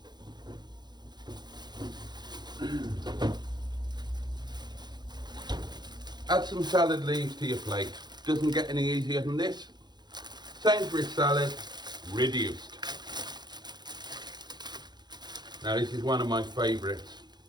Add some salad leaves to your plate. Doesn't get any easier than this. Sainsbury's salad, reduced. Now this is one of my favourites.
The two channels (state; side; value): late; left; 0.21 ms